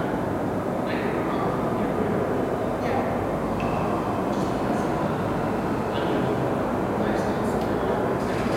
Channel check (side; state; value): both; identical; correlation 1.00